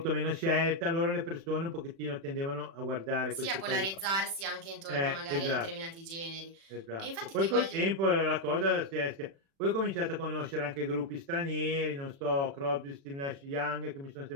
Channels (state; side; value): late; left; 36 ms